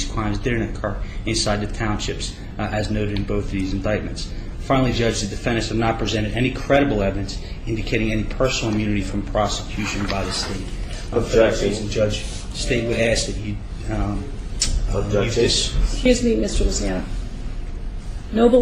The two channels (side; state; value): both; identical; correlation 1.00